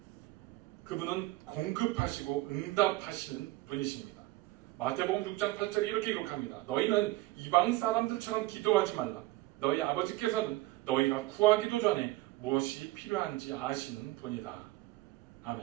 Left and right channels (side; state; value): left; quieter; 18.6 dB